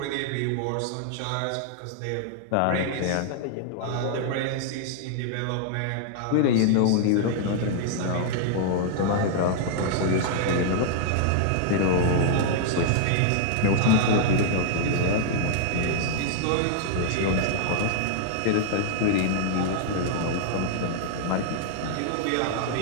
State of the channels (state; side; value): different; both; correlation -0.01